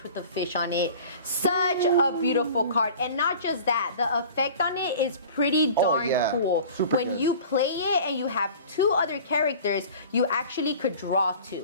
with the fish on it. Such a beautiful card. And not just that, the effect on it is pretty darn cool. Super when good. you play it and you have 2 other characters, you actually could draw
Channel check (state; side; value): inverted; both; correlation -0.42